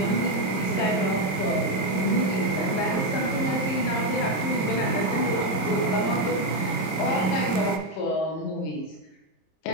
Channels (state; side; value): late; right; 27 ms